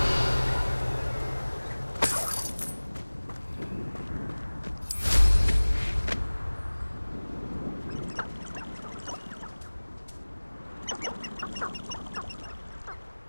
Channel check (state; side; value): inverted; both; correlation -1.00